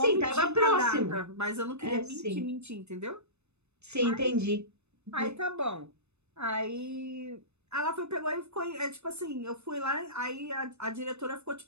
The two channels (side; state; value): left; late; 0.81 ms